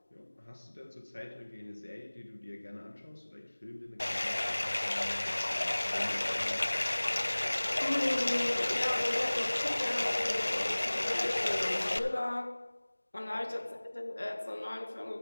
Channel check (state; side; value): inverted; both; correlation -1.00